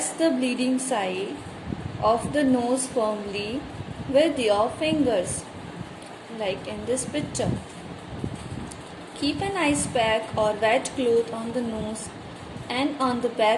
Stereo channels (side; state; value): both; identical; correlation 1.00